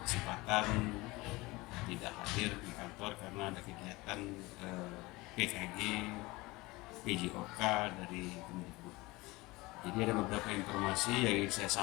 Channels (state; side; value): quieter; right; 21.9 dB